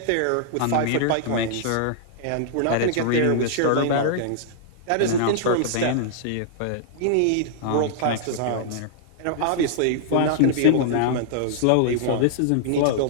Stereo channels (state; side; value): different; both; correlation -0.01